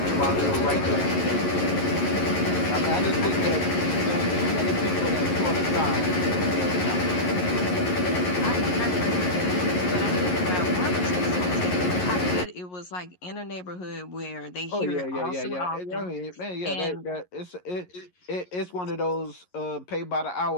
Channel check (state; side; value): late; right; 11 ms